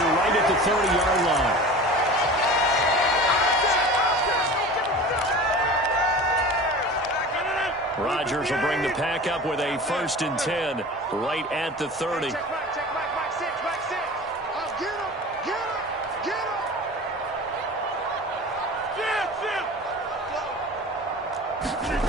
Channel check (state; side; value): normal; both; correlation 0.37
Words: right at the 30-yard line. Rodgers will bring the pack up with a 1st and 10 right at the 30.